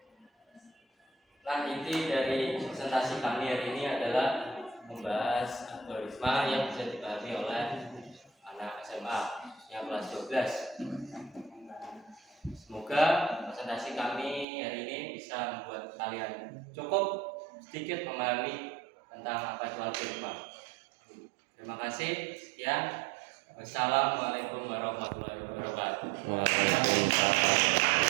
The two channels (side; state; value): left; drops out; at 14.5 s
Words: Nah, inti dari presentasi kami hari ini adalah membahas algoritma yang bisa dipahami oleh anak SMA yang kelas 12. Semoga presentasi kami hari ini bisa membuat kalian cukup sedikit memahami tentang apa itu algoritma. Terima kasih. Sekian. Wassalamualaikum warahmatullahi wabarakatuh.